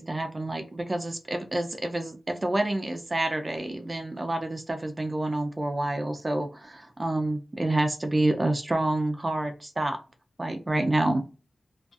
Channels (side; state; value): both; normal; correlation 0.97